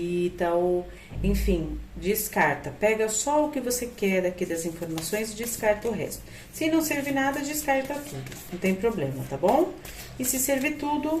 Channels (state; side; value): identical; both; correlation 1.00